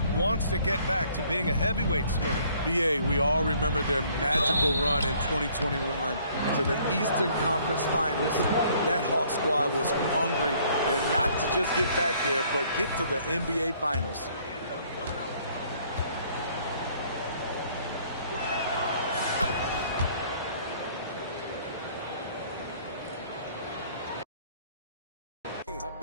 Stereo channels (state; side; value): inverted; both; correlation -0.61